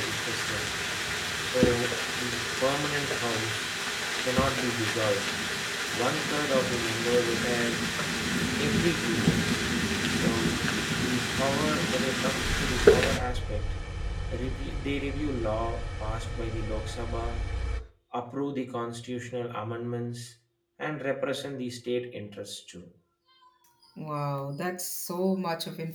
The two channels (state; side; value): identical; both; correlation 1.00